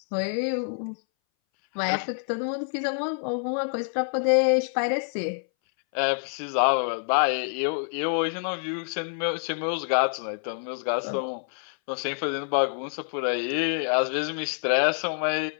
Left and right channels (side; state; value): right; silent; 60 dB below the other